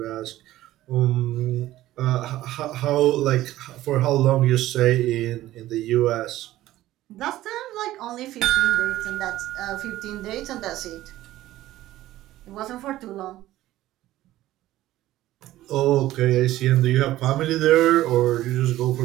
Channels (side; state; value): left; quieter; 15.1 dB